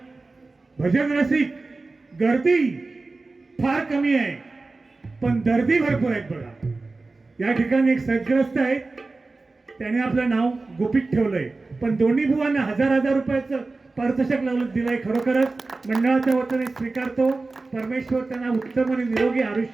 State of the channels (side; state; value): left; quieter; 3.5 dB